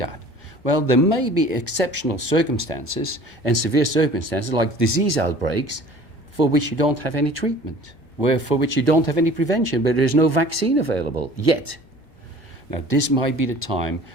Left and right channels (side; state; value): both; normal; correlation 0.47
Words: that? Well, there may be exceptional circumstances and severe circumstances like disease outbreaks for which you don't have any treatment, for which you don't have any prevention, but there's no vaccine available yet. Now, this might be the time